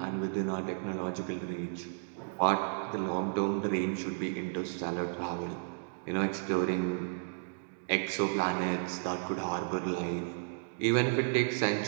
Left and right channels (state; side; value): silent; left; digital silence